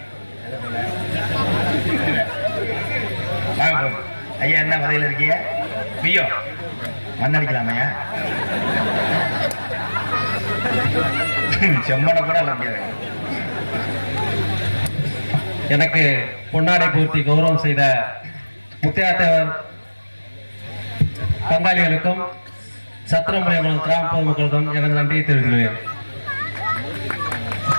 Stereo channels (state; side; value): inverted; both; correlation -1.00